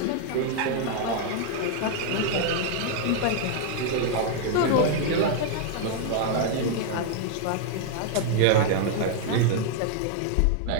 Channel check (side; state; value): both; different; correlation 0.00